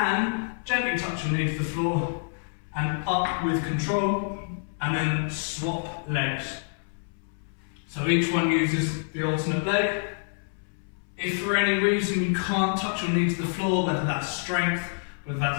gently touch your knee to the floor, and up with control, and then swap legs. So each one uses the alternate leg. If for any reason you can't touch your knee to the floor, whether that's strength, whether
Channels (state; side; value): silent; right; 60 dB below the other